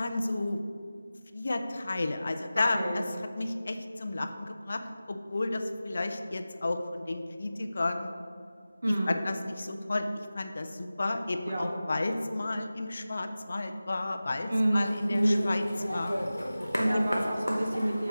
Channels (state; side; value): inverted; both; correlation -0.96